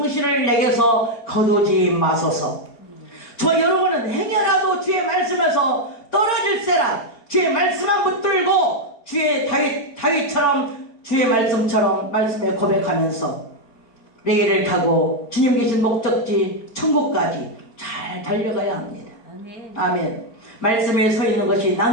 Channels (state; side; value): late; right; 4.3 ms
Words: 내게서 거두지 마소서. 저 여러분은 행여라도 주의 말씀에서 떨어질세라 주의 말씀만 붙들고 다윗처럼 주의 말씀처럼 말씀에 고백하면서 레일을 타고 주님 계신 목적지 천국까지 잘 달려가야 합니다. 아멘. 아멘. 말씀에 서 있는 것이